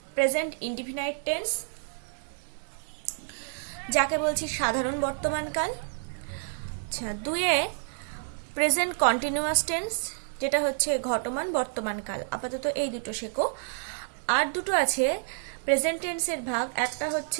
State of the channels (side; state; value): left; silent; digital silence